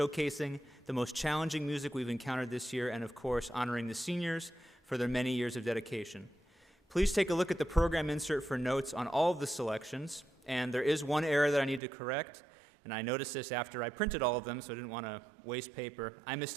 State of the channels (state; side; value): drops out; left; at 11.8 s